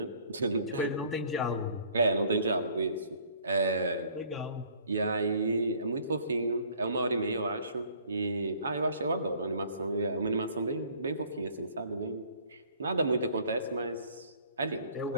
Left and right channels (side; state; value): both; inverted; correlation -0.56